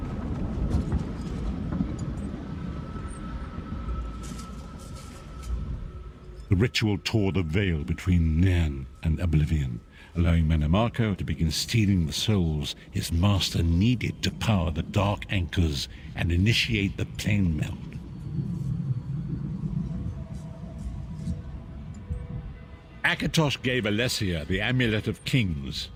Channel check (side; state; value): both; identical; correlation 1.00